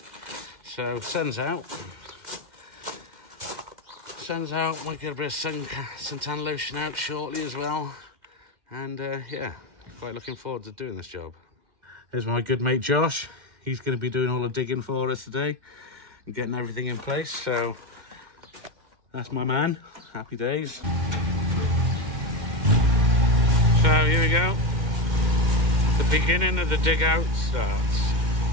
So sun's out. Sun's out, might get a bit of suntan lotion out shortly as well. And yeah, quite looking forward to doing this job. Here's my good mate Josh. He's going to be doing all the digging for us today and getting everything in place. So that's my man. Happy days. So here we go. The beginning of the dig out starts.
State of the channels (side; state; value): left; late; 2.1 ms